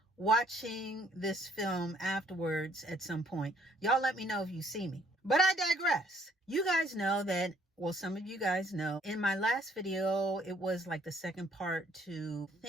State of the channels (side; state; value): both; normal; correlation 0.64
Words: watching this film afterwards at some point, y'all let me know if you see me. But I digress. You guys know that, well, some of you guys know, in my last video, it was like the second part to